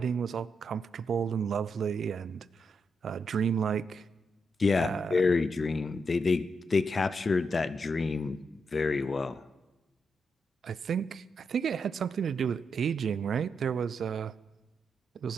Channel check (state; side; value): normal; both; correlation 0.82